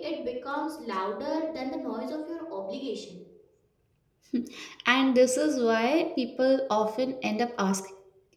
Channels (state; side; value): identical; both; correlation 1.00